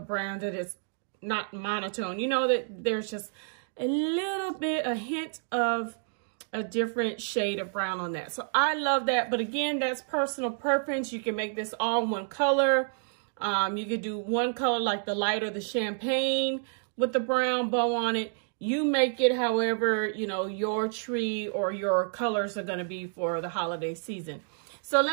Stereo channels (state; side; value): silent; left; 58 dB below the other